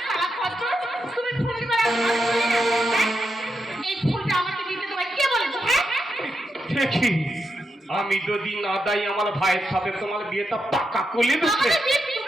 তুমি ফুল দিবা এই ফুলটা আমাকে দিতে তোমায় কে বলেছে হ্যাঁ দেখি আমি যদি না দাই আমার ভাইয়ের সাথে তোমার বিয়েটা পাকা করে দিতে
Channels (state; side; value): normal; both; correlation 0.85